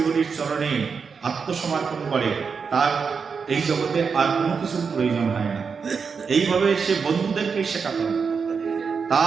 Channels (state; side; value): quieter; left; 5.7 dB